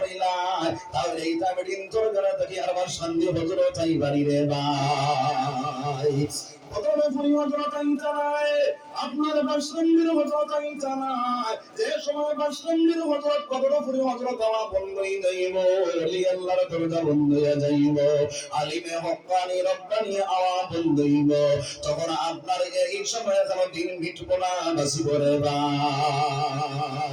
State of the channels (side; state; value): both; identical; correlation 1.00